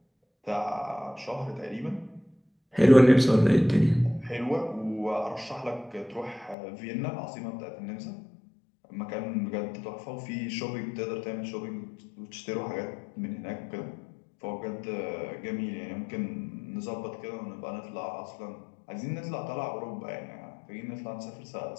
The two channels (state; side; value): drops out; right; at 6.6 s